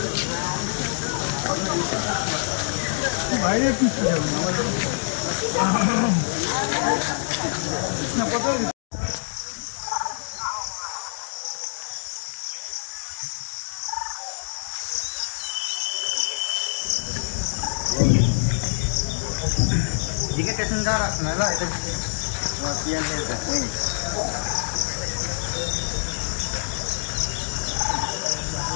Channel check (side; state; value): right; silent; digital silence